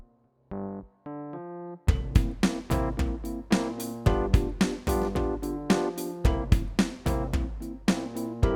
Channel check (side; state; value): both; identical; correlation 1.00